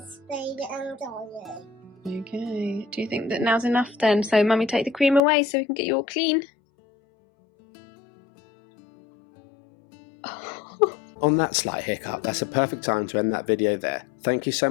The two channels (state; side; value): drops out; right; at 5.2 s